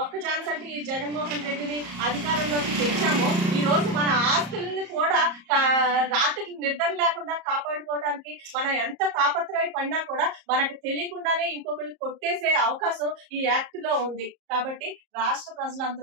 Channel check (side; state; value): left; late; 34 ms